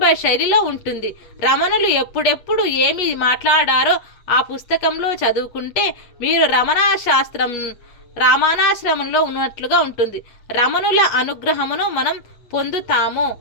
శైలిలో ఉంటుంది. రమణులు ఎప్పుడెప్పుడు ఏమి మాట్లాడారో ఆ పుస్తకంలో చదువుకుంటే మీరు రామానాశ్రమంలో ఉన్నట్లుగా ఉంటుంది. రమణుల అనుగ్రహమును మనం పొందుతాము.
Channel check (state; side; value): late; right; 8.4 ms